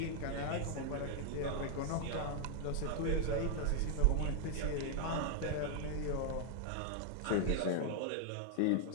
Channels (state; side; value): different; both; correlation 0.00